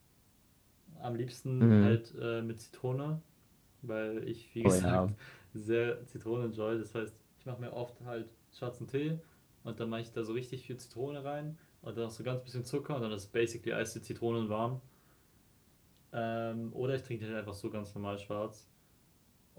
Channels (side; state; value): both; identical; correlation 1.00